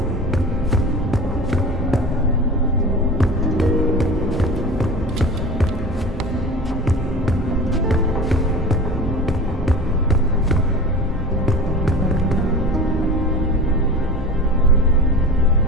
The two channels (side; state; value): both; normal; correlation 0.35